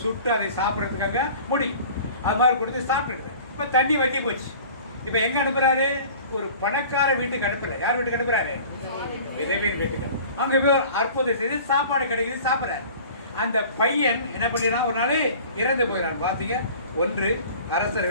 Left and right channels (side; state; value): both; inverted; correlation -0.44